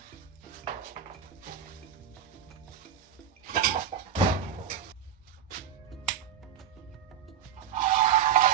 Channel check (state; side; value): quieter; left; 9.0 dB